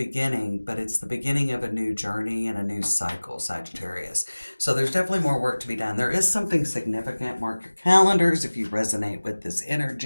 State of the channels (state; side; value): inverted; both; correlation -1.00